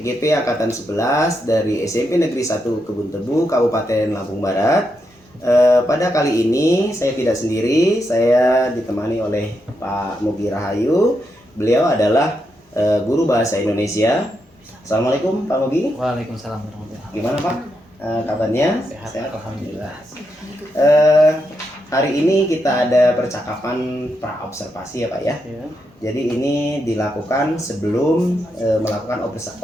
Angkatan 11 dari SMP Negeri 1 Kebun Tebu, Kabupaten Lampung Barat. Pada kali ini saya tidak sendiri, saya ditemani oleh Pak Mugi Rahayu. Beliau adalah guru bahasa Indonesia. Assalamualaikum Pak Mugi. Waalaikumsalam warahmatullahi wabarakatuh. Gimana Pak? Kabarnya? Sehat, alhamdulillah. Hari ini kita ada percakapan pra-observasi ya Pak ya. Ya. Jadi ini dilakukan sebelum melakukan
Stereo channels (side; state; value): both; normal; correlation 0.83